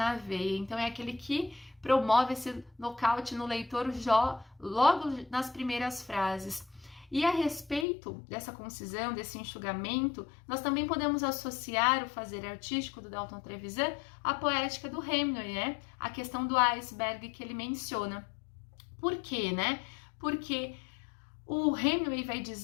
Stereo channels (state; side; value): drops out; right; at 7.9 s